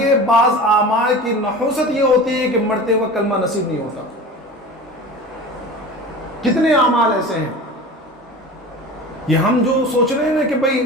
بعض اعمال کی نحوست یہ ہوتی ہے کہ مرتے وقت کلمہ نصیب نہیں ہوتا. کتنے اعمال ایسے ہیں، یہ ہم جو سوچ رہے ہیں نا کہ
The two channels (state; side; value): normal; both; correlation 0.35